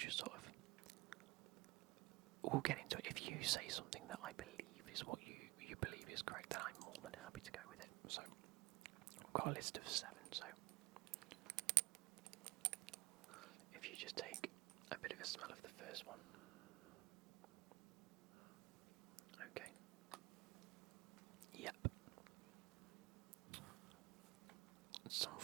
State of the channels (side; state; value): left; quieter; 22.2 dB